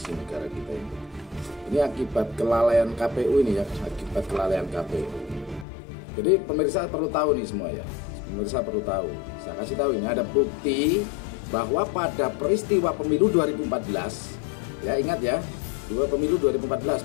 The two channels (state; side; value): drops out; right; at 5.7 s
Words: negara kita ini. Ini akibat kelalaian KPU ini ya, akibat kelalaian KPU. Jadi pemirsa perlu tahu nih semua ya, pemirsa perlu tahu. Saya kasih tahu ini ada bukti bahwa pada peristiwa pemilu 2014, ya ingat ya, dua pemilu 2014